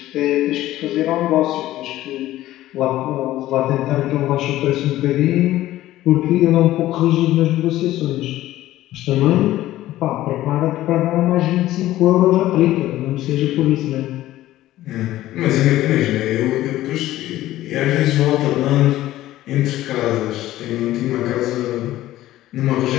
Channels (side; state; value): right; quieter; 14.9 dB